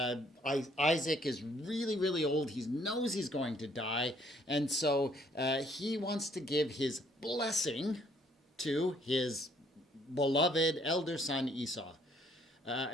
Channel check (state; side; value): normal; both; correlation 0.64